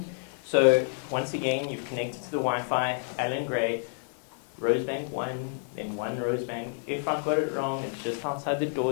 So once again, you've connected to the Wi-Fi, Alan Gray, Rosebank 1, then 1 Rosebank. If I've got it wrong, it's just outside the door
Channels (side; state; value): right; silent; 58 dB below the other